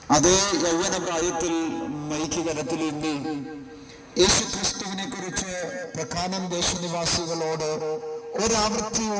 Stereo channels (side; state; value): both; identical; correlation 1.00